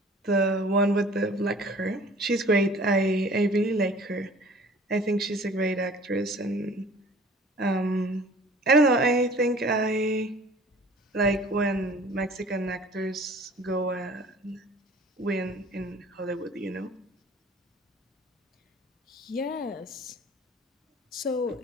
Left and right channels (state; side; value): normal; both; correlation 0.48